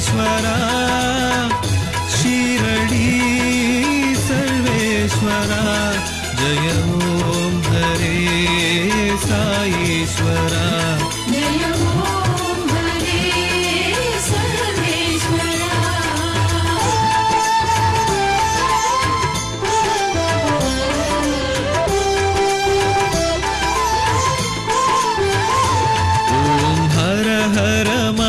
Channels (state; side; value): identical; both; correlation 1.00